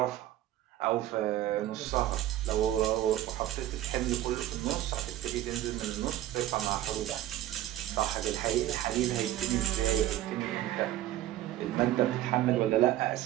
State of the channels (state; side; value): quieter; left; 13.6 dB